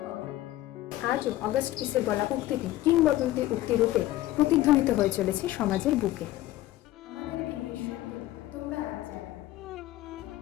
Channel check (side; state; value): right; quieter; 15.4 dB